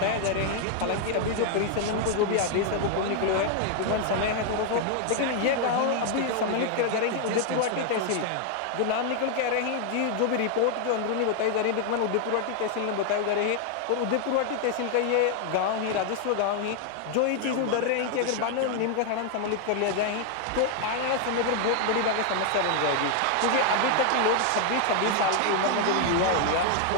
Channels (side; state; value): both; different; correlation 0.00